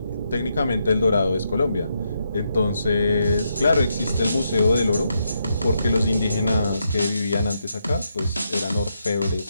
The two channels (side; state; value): both; inverted; correlation -0.81